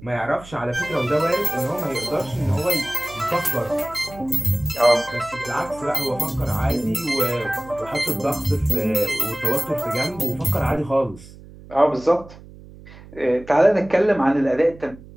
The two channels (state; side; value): noise; right; hum, 19 dB below the sound